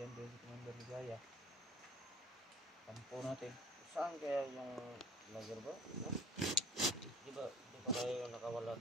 din si Commander Ligaya. Kampo natin. Saan kaya yung vlogger bro? No? Di ba tayo nakawala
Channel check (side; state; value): both; normal; correlation 0.49